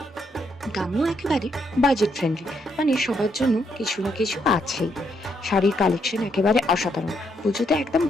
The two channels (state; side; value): normal; both; correlation 0.75